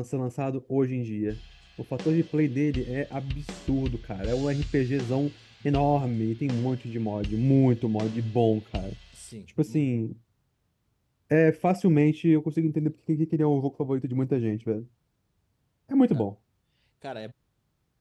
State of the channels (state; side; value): identical; both; correlation 1.00